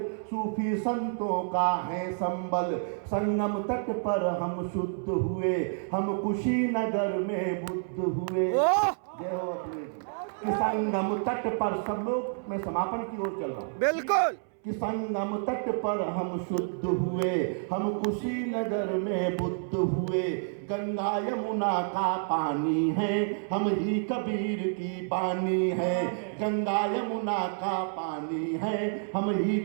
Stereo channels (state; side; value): silent; left; 58 dB below the other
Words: सूफी संतों का है संबल। संगम तट पर हम शुद्ध हुए, हम कुशीनगर में बुद्ध हुए। जय हो अखिलेश जी। कि संगम तट पर सब लोग, मैं समापन की ओर चल रहा हूँ। बिल्कुल। कि संगम तट पर हम शुद्ध हुए, हम कुशीनगर में बुद्ध हुए। गंगा यमुना का पानी है, हम ही कबीर की बानी है। गंगा यमुना का पानी है, हम ही